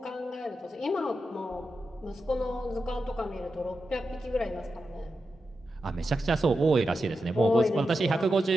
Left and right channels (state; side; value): normal; both; correlation 0.89